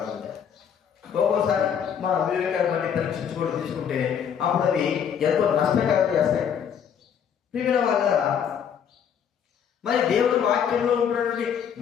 ఒక్కోసారి మన వివేకాన్ని బట్టి పరీక్షించుకోవడం తీసుకుంటే అప్పుడు అవి ఎంతో నష్టకరం చేస్తాయి. ప్రియమైన వాళ్ళ మరి దేవుడి వాక్యంలో ఉన్నటువంటి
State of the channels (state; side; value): quieter; right; 8.0 dB